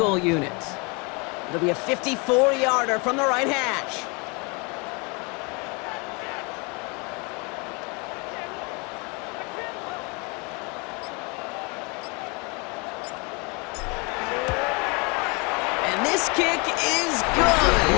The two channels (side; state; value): right; quieter; 30.7 dB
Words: unit. It'll be a 54-yarder from the right hash. And this kick is good.